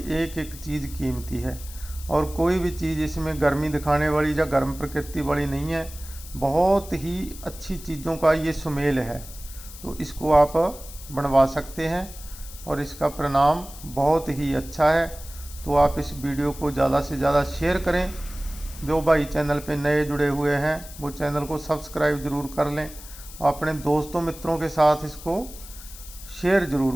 एक एक चीज़ कीमती है और कोई भी चीज़ इसमें गर्मी दिखाने वाली या गर्म प्रकृति वाली नहीं है। बहुत ही अच्छी चीज़ों का ये सुमेल है, तो इसको आप बनवा सकते हैं और इसका परिणाम बहुत ही अच्छा है। तो आप इस वीडियो को ज़्यादा से ज़्यादा शेयर करें। जो भाई चैनल पे नए जुड़े हुए हैं वो चैनल को सब्सक्राइब ज़रूर कर लें और अपने दोस्तों मित्रों के साथ इसको शेयर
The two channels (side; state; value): left; noise; hiss, 16 dB below the sound